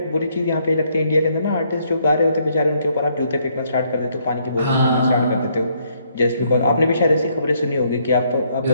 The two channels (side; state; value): both; inverted; correlation -0.70